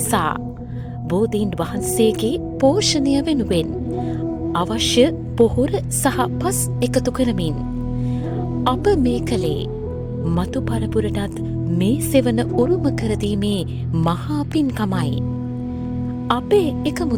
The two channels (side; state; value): both; identical; correlation 1.00